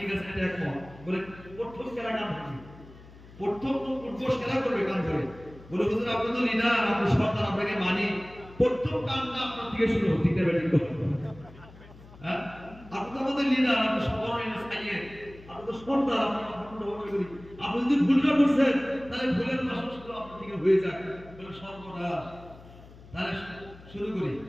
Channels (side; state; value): left; noise; hum, 20 dB below the sound